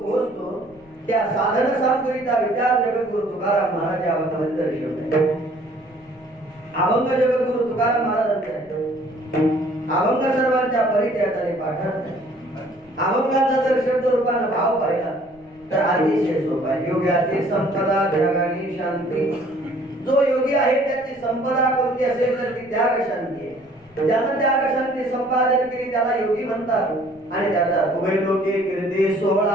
पोहोचतो त्या साधन सामग्रीचा विचार जगद्गुरु तुकाराम महाराज या अभंगामध्ये दर्शवतात. अभंग जगद्गुरु तुकाराम महाराजांचा अभंग सर्वांच्या परिचयाने पाठवतात. अभंगाचा जर शब्द रूपाने भाव पाहिला तर अतिशय सोपा आहे. योग्याची संपदा जगानी शांती. जो योगी आहे त्याची संपदा कोणती असेल तर ती त्याग शांती आहे. ज्यानं त्याग शांती संपादन केली त्याला योगी म्हणतात. आणि त्याचा उभय लोके कीर्ती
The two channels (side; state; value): left; noise; rumble, 30 dB below the sound